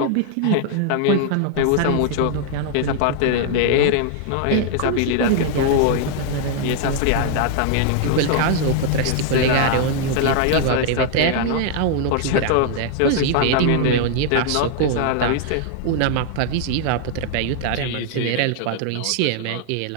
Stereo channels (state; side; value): different; both; correlation 0.00